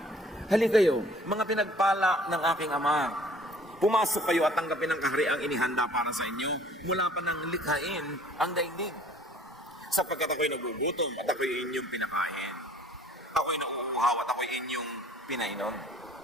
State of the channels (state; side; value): normal; both; correlation 0.54